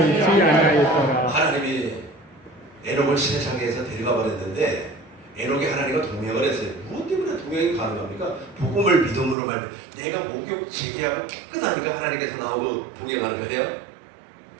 아니하였더라. 하나님이 에녹을 세상에서 데려가 버렸는데 에녹이 하나님과 동행을 했어요. 무엇 때문에 동행이 가능합니까? 복음을 믿음으로 말면 내가 목욕 재개하고 깨끗하니까 하나님께서 나오고 동행하는 거예요?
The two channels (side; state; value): left; drops out; at 9.3 s